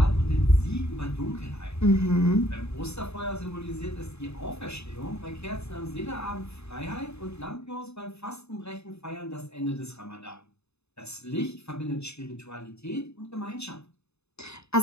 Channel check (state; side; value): late; right; 0.80 ms